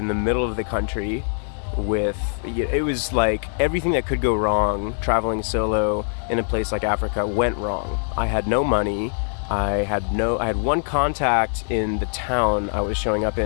the middle of the country it was like everything that could go wrong traveling solo in a place like Africa went wrong. I had no money. I had one contact in the town I was showing up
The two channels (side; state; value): right; silent; 62 dB below the other